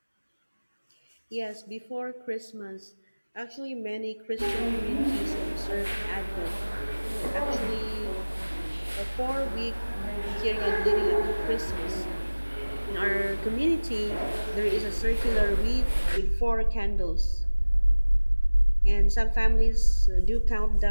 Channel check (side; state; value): both; inverted; correlation -1.00